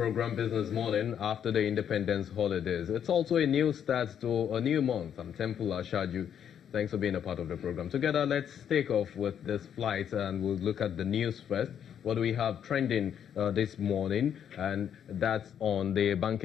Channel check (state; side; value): quieter; right; 8.9 dB